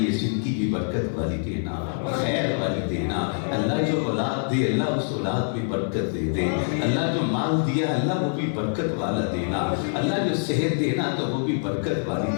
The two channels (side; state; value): right; silent; digital silence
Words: زندگی بھی برکت والی دینا، خیر والی دینا، اللہ جو اولاد دے اللہ اس اولاد میں برکت دے دے، اللہ جو مال دیا اللہ وہ بھی برکت والا دینا، اللہ جو صحت دینا تو وہ بھی برکت والی